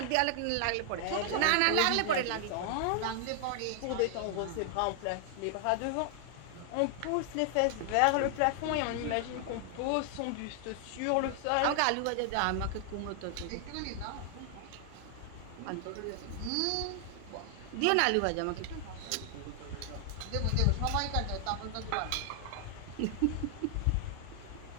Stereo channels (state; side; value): different; both; correlation 0.00